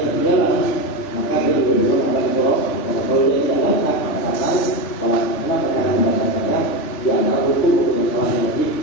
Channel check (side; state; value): right; late; 3.5 ms